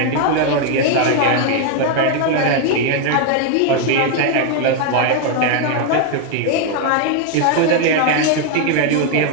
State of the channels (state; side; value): different; both; correlation 0.00